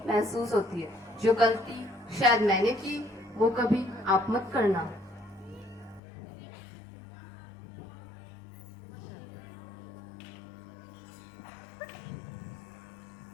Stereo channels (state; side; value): drops out; right; at 6.0 s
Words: महसूस होती है. जो गलती शायद मैंने की, वो कभी आप मत करना.